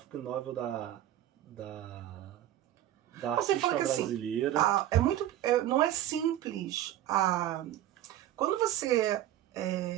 novel da artista brasileira. Assim, não é simples. Quando você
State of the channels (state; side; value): quieter; left; 12.8 dB